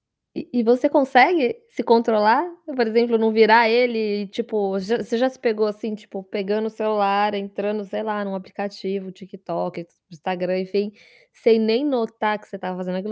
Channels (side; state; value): both; identical; correlation 1.00